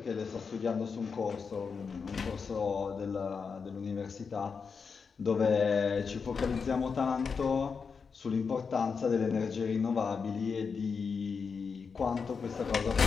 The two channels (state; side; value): quieter; right; 5.6 dB